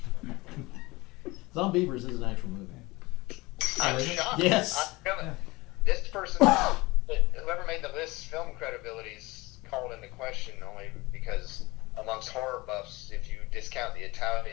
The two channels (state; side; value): quieter; right; 22.0 dB